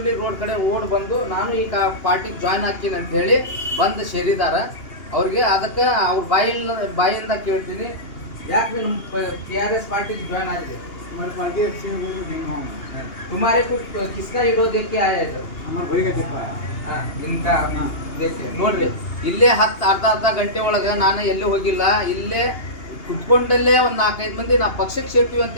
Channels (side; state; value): right; late; 2.8 ms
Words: ರೋಡ್ ಕಡೆ ಓಡ್ ಬಂದು ನಾನು ಈಗ ಪಾರ್ಟಿಗೆ ಜಾಯ್ನ್ ಹಾಕಿನಿ ಅಂತ ಹೇಳಿ ಬಂದು ಸೇರಿದಾರ. ಅವ್ರಿಗೆ ಅದಕ್ಕೆ ಅವ್ರ ಬಾಯಿಂದ ಕೇಳ್ತೀನಿ, ಯಾಕೆ ನಮ್ಮ KRS ಪಾರ್ಟಿಗೆ ಜಾಯ್ನ್ ಆಗಿದೆ? हमारे पार्टी अच्छी है, वो भी नहीं हूँ तुम्हारे को किसका विरोध देख के आया है? हमारे भाई का देखा है. ಇನ್ಕಾ ನೋಡ್ರಿ, ಇಲ್ಲೇ ಅರ್ಧ ಗಂಟೆ ಒಳಗೆ ನಾನು ಎಲ್ಲೂ ಹೋಗಿಲ್ಲ. ಇಲ್ಲೇ ಕುತ್ಕೊಂಡಲ್ಲೇ ಒಂದು 4-5 ಮಂದಿ ನಾ ಪಕ್ಷಕ್ಕೆ ಸೇರ್ತೀವಿ ಅಂತ